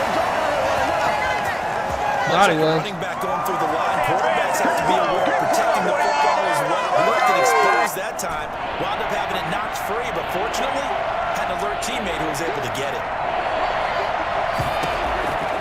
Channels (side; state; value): both; identical; correlation 1.00